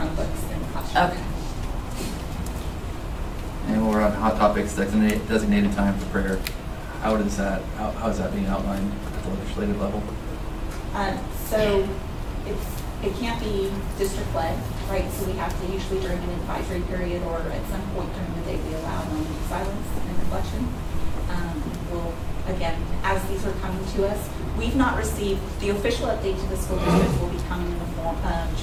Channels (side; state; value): both; identical; correlation 1.00